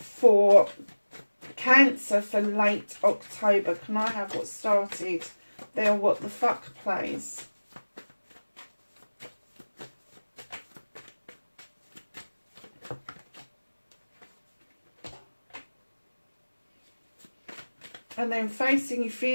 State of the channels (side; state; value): both; inverted; correlation -1.00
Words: Cancer for late October. Can I have what started there? What the fuck, please? And then facing your